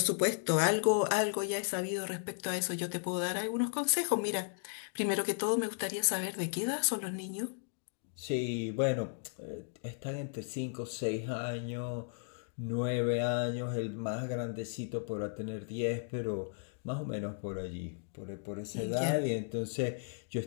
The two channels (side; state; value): right; silent; digital silence